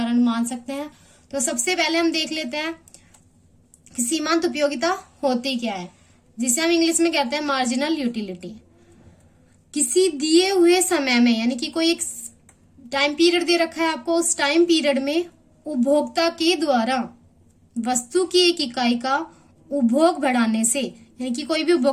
मान सकते हैं। तो सबसे पहले हम देख लेते हैं कि सीमांत उपयोगिता होती क्या है, जिसे हम इंग्लिश में कहते हैं मार्जिनल यूटिलिटी। किसी दिए हुए समय में, यानी कि कोई एक टाइम पीरियड दे रखा है आपको, उस टाइम पीरियड में उपभोक्ता के द्वारा वस्तु की एक इकाई का उपभोग बढ़ाने से, यानी कि कोई भी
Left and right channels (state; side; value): identical; both; correlation 1.00